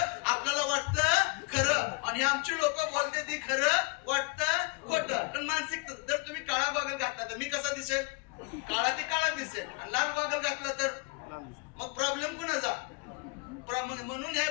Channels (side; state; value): right; quieter; 30.6 dB